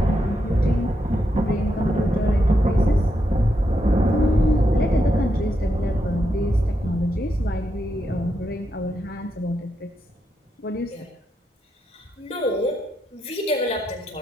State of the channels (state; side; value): normal; both; correlation 0.83